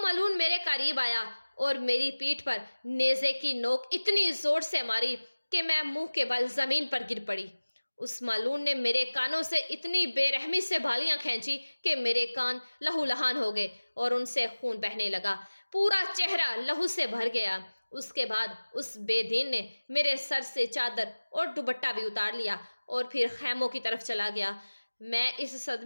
मेरे करीब आया और मेरी पीठ पर नेज़े की नोक इतनी जोर से मारी कि मैं मुंह के बल जमीन पर गिर पड़ी। उस मालून ने मेरे कानों से इतनी बेरहमी से बालियां खींची कि मेरे कान लहूलुहान हो गए और उनसे खून बहने लगा। पूरा चेहरा लहू से भर गया। उसके बाद उस बेदीन ने मेरे सर से चादर और दुपट्टा भी उतार लिया और फिर खैमों की तरफ चला गया। मैं इस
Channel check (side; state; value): both; inverted; correlation -1.00